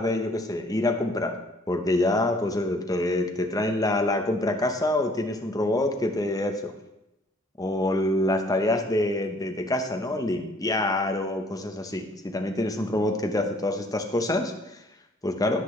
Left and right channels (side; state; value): both; normal; correlation 0.59